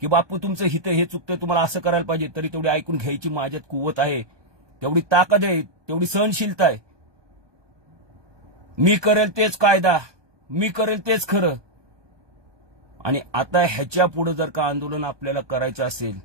की बापू तुमचं हित हे चुकतंय, तुम्हाला असं करायला पाहिजे, तरी तेवढी ऐकून घ्यायची माझ्यात कुवत आहे, तेवढी ताकद आहे, तेवढी सहनशीलता आहे. मी करेल तेच कायदा, मी करेल तेच खरं. आणि आता ह्याच्या पुढे जर का आंदोलन आपल्याला करायचं असेल,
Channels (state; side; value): late; left; 1.2 ms